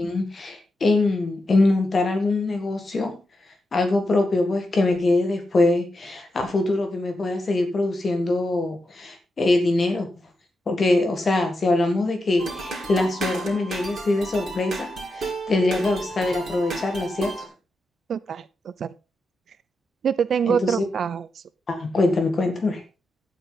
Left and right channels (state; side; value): normal; both; correlation 0.87